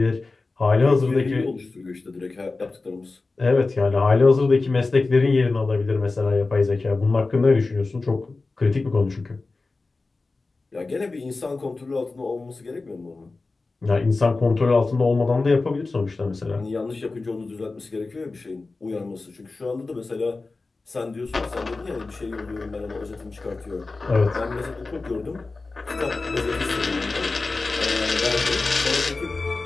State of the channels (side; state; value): right; quieter; 3.6 dB